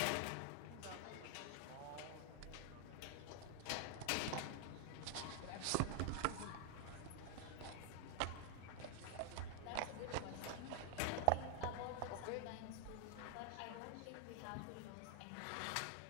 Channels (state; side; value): different; both; correlation 0.00